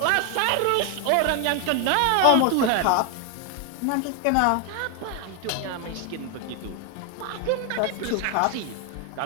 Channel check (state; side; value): different; both; correlation 0.01